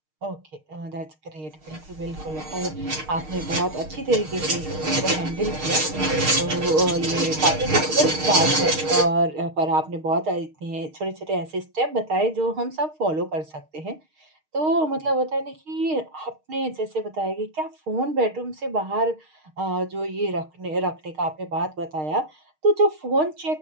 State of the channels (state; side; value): late; left; 6.5 ms